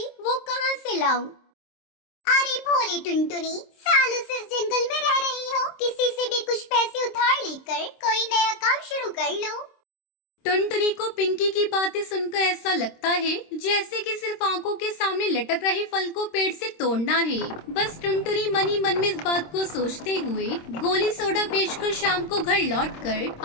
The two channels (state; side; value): late; right; 26 ms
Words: वो कहाँ से लाऊं? अरे भोली टुनटुनी, सालों से इस जंगल में रह रही हो, किसी से भी कुछ पैसे उधार लेकर कोई नया काम शुरू कर लो। टुनटुनी को पिंकी की बातें सुनकर ऐसा लगता है जैसे कि सिर्फ आंखों के सामने लटक रहे फल को पेड़ से तोड़ना है। बस टुनटुनी मन ही मन में इस बात को सोचते हुए गोली सोडा बेचकर शाम को घर